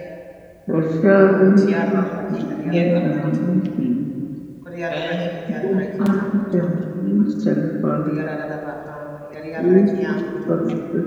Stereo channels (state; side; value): identical; both; correlation 1.00